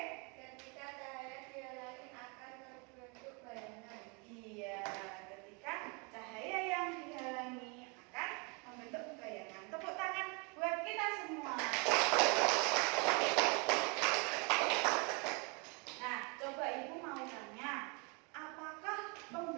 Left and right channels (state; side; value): quieter; left; 32.2 dB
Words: Ketika cahaya dihalangi akan terbentuk bayangan. Iya, ketika cahaya yang dihalangi akan membentuk bayangan. Tepuk tangan buat kita semua. Nah, coba Ibu mau tanya, apakah